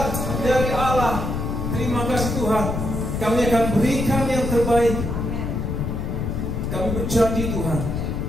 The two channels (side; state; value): left; noise; rumble, 2 dB below the sound